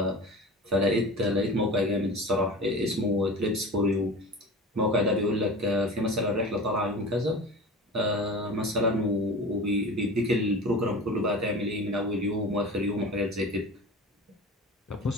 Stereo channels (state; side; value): normal; both; correlation 0.35